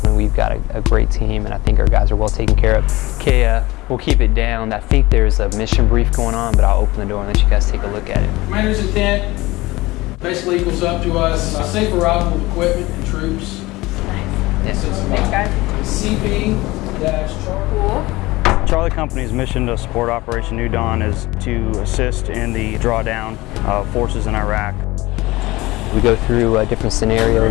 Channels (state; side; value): quieter; right; 20.2 dB